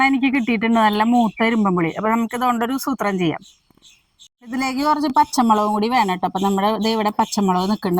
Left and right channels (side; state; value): both; identical; correlation 1.00